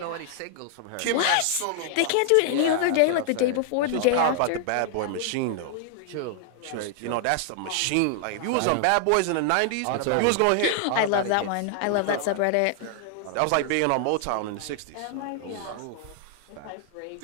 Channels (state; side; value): different; both; correlation 0.00